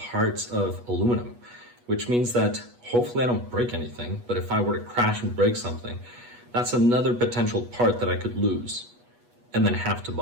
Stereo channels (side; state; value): left; late; 8.3 ms